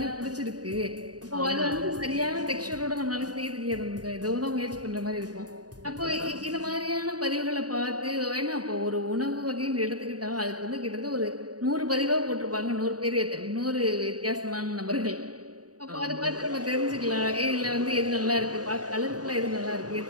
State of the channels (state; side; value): late; left; 0.68 ms